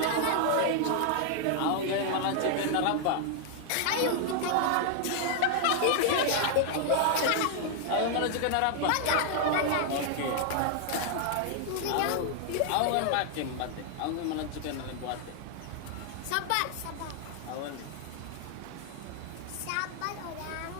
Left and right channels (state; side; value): different; both; correlation 0.00